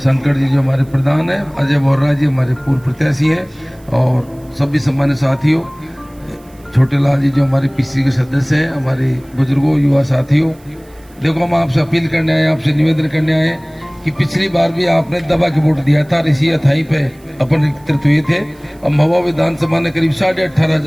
जी जो हमारे प्रधान हैं, अजय बोर्रा जी हमारे पूर्व प्रत्याशी हैं, और सभी सम्मान्य साथियों, छोटे लाल जी जो हमारे पीसी के सदस्य हैं, हमारे बुजुर्गों, युवा साथियों, देखो हम आपसे अपील करने आए, आपसे निवेदन करने आए कि पिछली बार भी आपने दबा के वोट दिया था, इसी अथाई पे अपन एकत्रित हुए थे। अब महुआ विधानसभा ने करीब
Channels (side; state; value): right; noise; hiss, 29 dB below the sound